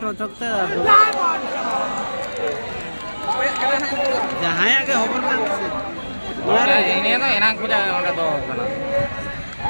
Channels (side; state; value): both; inverted; correlation -1.00